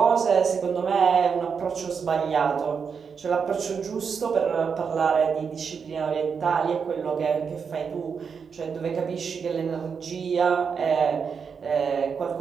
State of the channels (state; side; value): quieter; left; 6.2 dB